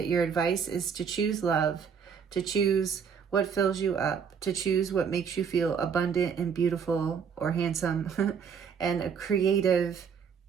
Your advice is to choose love, to choose what fills you up, to choose what makes you feel abundant and beautiful or handsome and creative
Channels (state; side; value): quieter; left; 6.8 dB